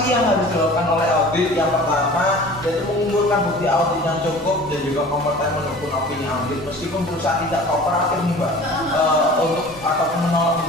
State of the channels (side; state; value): both; normal; correlation 0.43